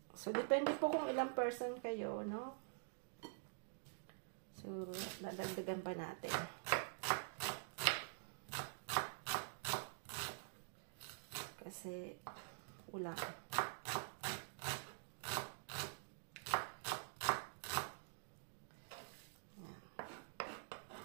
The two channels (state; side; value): silent; left; digital silence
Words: So, depende po kung ilang person kayo, no? Siguro, dadagdagan pa natin. Kasi, ulang.